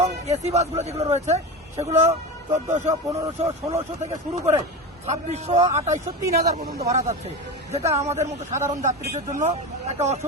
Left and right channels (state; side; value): normal; both; correlation 0.23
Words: এসি বাসগুলো যেগুলো রয়েছে সেগুলো 1400, 1500, 1600 থেকে শুরু করে 2600, 2800, 3000 পর্যন্ত ভাড়া যাচ্ছে, যেটা আমাদের মতো সাধারণ যাত্রীদের জন্য একটা